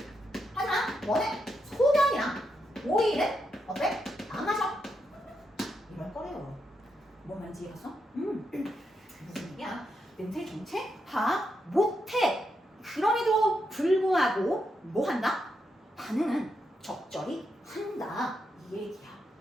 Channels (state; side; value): normal; both; correlation 0.83